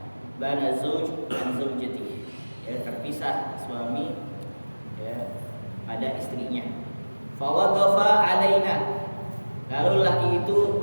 Bana zauj an zaujati, terpisah suami pada istrinya. Fa waqafa alaina, lalu laki itu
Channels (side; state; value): both; inverted; correlation -1.00